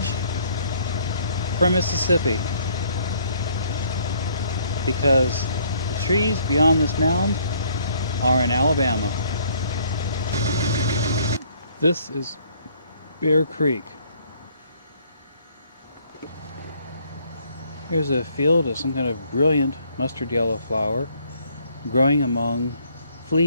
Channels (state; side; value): inverted; both; correlation -0.63